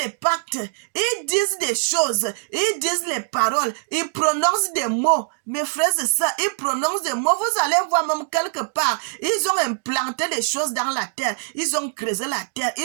pactes, ils disent des choses, ils disent les paroles, ils prononcent des mots. Mes frères, c'est ça, ils prononcent des mots. Vous allez voir même quelque part, ils ont implanté des choses dans la terre, ils ont creusé la terre,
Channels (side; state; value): left; silent; digital silence